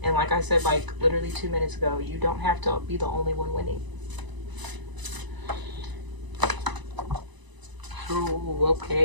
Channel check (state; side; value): late; left; 1.0 ms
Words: And like I said, like literally 2 minutes ago, you don't have to be the only one winning. Oh,